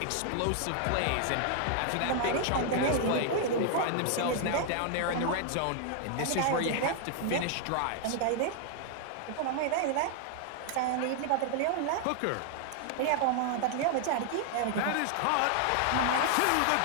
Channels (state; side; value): different; both; correlation 0.00